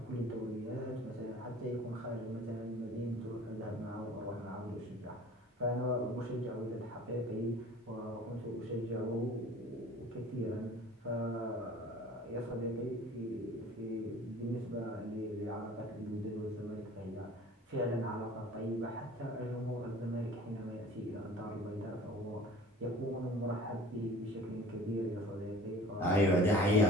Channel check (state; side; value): normal; both; correlation 0.45